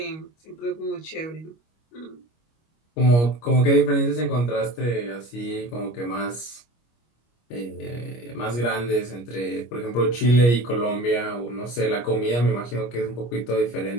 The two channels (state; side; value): late; right; 25 ms